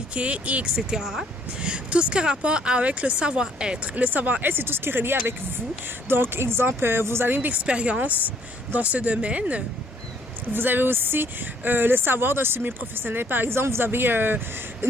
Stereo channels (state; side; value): normal; both; correlation 0.65